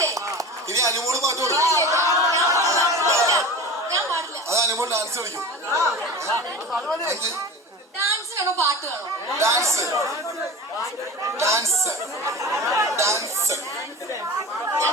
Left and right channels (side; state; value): both; normal; correlation 0.33